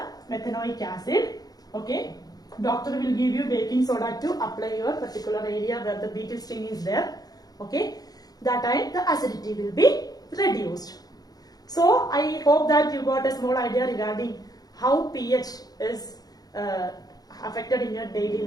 methanoic acid. Okay, doctor will give you baking soda to apply your particular area where the beetle sting is there. Okay, that time the acidity will be reduced. So I hope that you got a small idea regarding how pH is affected in your daily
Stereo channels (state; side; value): late; right; 0.19 ms